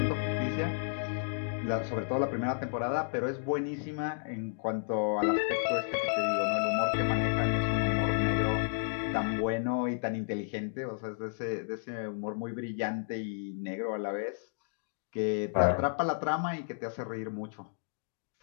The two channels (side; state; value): right; silent; digital silence